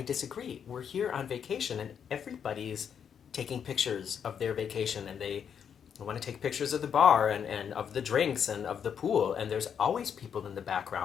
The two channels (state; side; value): quieter; right; 7.8 dB